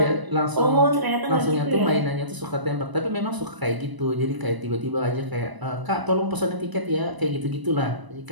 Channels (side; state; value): left; late; 1.0 ms